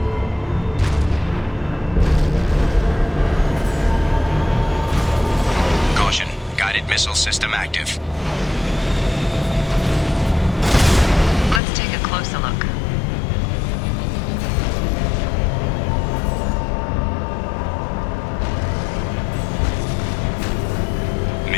missile system active. Let's take a closer look.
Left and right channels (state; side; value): drops out; right; at 11.6 s